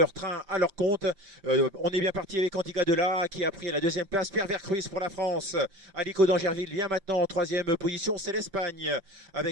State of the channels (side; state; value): left; late; 5.7 ms